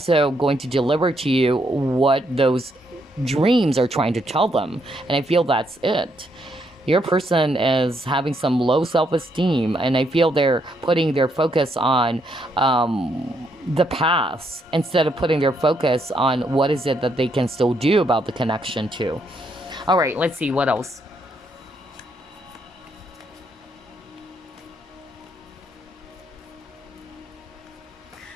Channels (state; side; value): normal; both; correlation 0.75